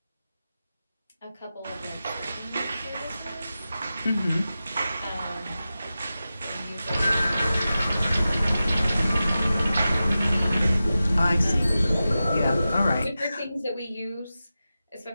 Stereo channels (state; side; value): inverted; both; correlation -0.93